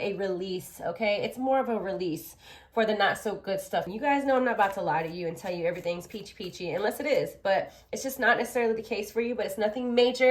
release, okay? It's more of a release for the not so good stuff. You guys know I'm not about to lie to you and tell you everything's peachy, unless it is. But it's just not necessarily the case for you, but it's nothing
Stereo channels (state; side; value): identical; both; correlation 1.00